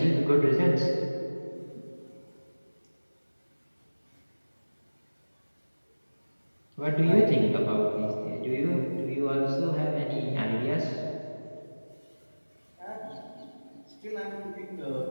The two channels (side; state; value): both; inverted; correlation -1.00